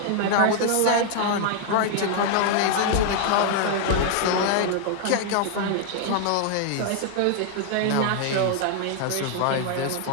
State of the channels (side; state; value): both; different; correlation 0.00